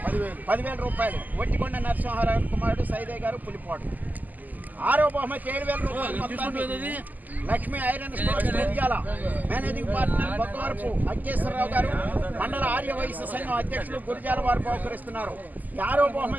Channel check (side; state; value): left; late; 0.082 ms